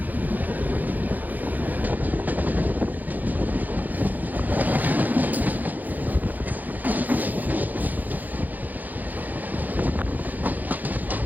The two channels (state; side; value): late; left; 0.083 ms